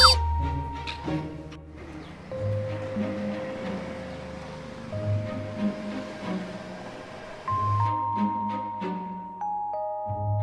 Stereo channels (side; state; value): both; identical; correlation 1.00